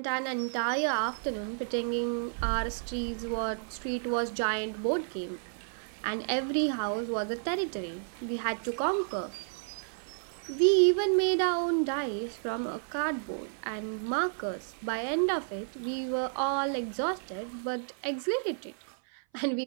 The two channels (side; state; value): left; silent; 57 dB below the other